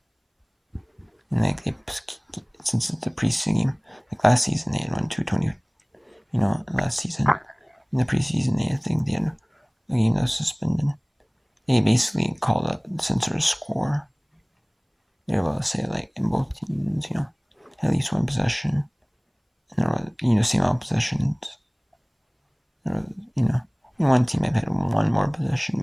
And like since it's the preseason game, like last season they had won 220. Last season in the preseason I think they had a game that was suspended. They basically called a censor score. They were able to say like in both teams, at least one possession, and there was same amount of possessions. There was, one team might have had one more possession,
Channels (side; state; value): both; identical; correlation 1.00